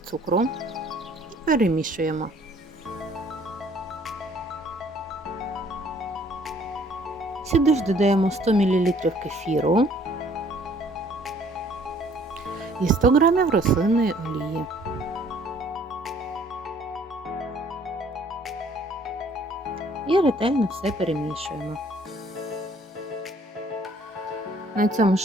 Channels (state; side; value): normal; both; correlation 0.59